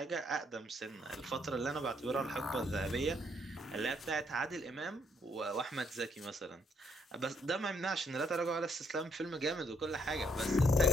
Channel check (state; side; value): normal; both; correlation 0.71